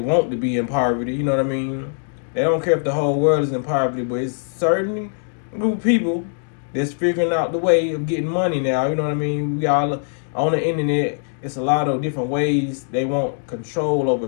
to be in poverty, you know what I mean? They don't care if the whole world is in poverty, but it's certain group of people that's figuring out the way of getting money now, you know what I mean? We all on the internet, it's a lot of different ways they want control over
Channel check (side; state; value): right; silent; digital silence